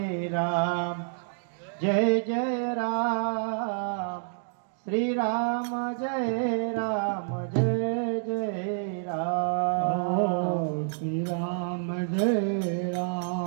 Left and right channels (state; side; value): silent; left; digital silence